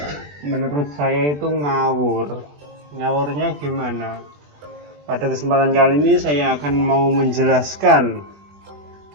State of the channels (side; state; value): left; late; 20 ms